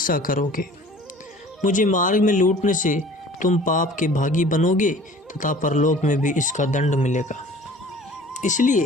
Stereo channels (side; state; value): both; normal; correlation 0.47